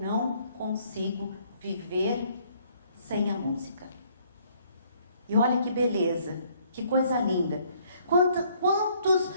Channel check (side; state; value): both; inverted; correlation -0.64